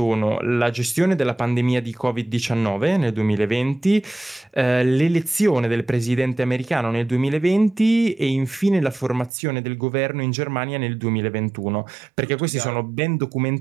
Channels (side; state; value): left; drops out; at 9.3 s